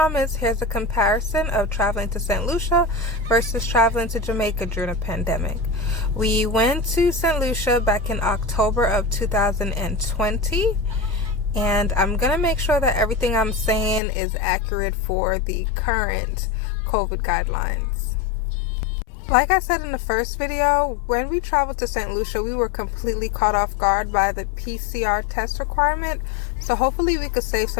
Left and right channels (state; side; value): drops out; right; at 14.0 s